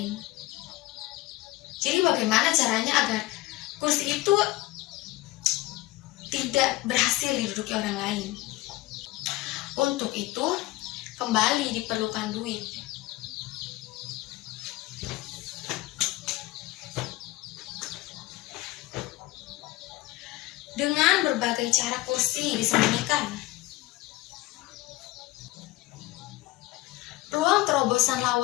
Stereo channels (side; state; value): right; quieter; 18.8 dB